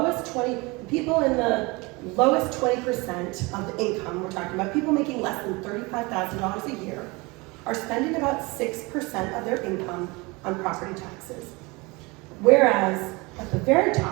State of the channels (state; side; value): quieter; left; 25.5 dB